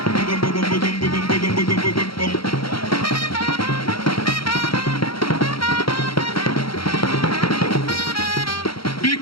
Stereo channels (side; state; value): right; late; 0.74 ms